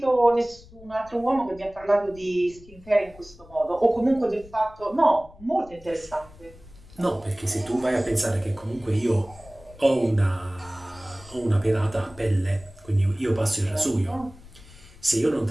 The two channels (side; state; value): left; noise; rumble, 22 dB below the sound